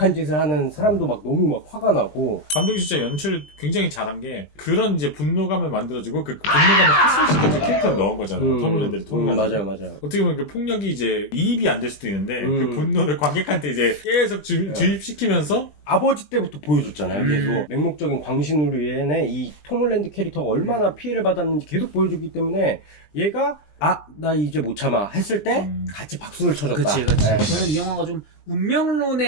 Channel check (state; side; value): late; right; 20 ms